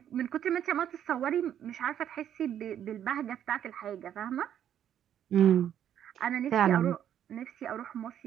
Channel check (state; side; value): quieter; left; 10.1 dB